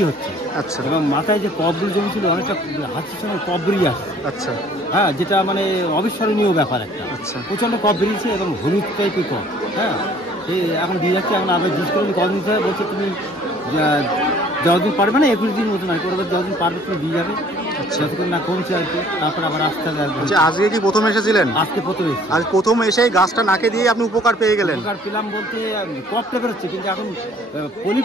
হচ্ছে। আচ্ছা, এবং মাথায় যে কফগুলো জমেছিল অনেকটা হাঁচির সঙ্গে কফ বেরিয়ে আসছে। আচ্ছা, হ্যাঁ, যেটা মানে অবিস্মরণীয় ব্যাপার একটা। আচ্ছা, প্রচণ্ড কফ বেরিয়েছে এবং হলুদ টাইপের কফ। হ্যাঁ, এই এখন দিয়ে যাচ্ছে। এখন আবার জিজ্ঞেস করে কদিন দিতে হবে, বলছে তুমি যতদিন পারবে না, 21 দিন মতো নয়, করবে যতদিন পারবে তুমি দিয়ে যাবে। যতক্ষণ না কমছে আর কি, তারপর আবার আসতে হবে। আজকে কি প্রথম এসেছিলেন? আজকে প্রথম এসেছি। আজ প্রথম এসে গাছটা নাকে দিয়ে আপনি উপকার পেয়ে গেলেন? উপকার পেলাম বলতে কফটা বেরোচ্ছে, কিন্তু এখন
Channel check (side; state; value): both; normal; correlation 0.56